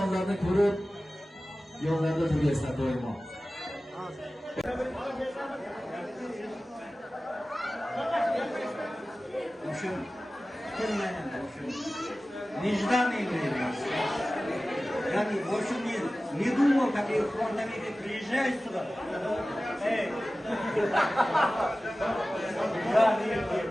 ko'rib, yo'llarda turgaysizlar doimo. Ушим kelmagan ушим нежданный время. Я больше не думал, как я фронтовик приезжаю сюда. Эй!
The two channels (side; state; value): both; normal; correlation 0.96